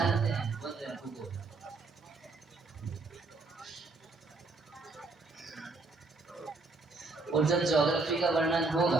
हैं, बोल रहे हैं भूगोल। और जब ज्योग्राफी का वर्णन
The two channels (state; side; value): quieter; left; 3.6 dB